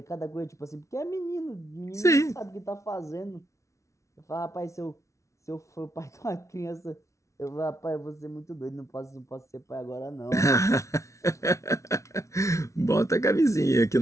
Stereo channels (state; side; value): late; right; 0.14 ms